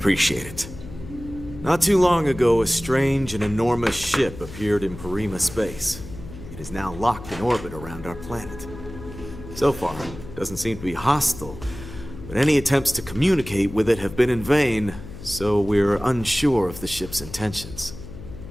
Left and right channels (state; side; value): noise; left; hum, 13 dB below the sound